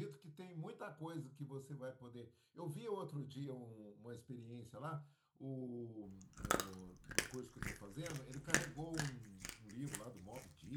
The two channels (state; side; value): identical; both; correlation 1.00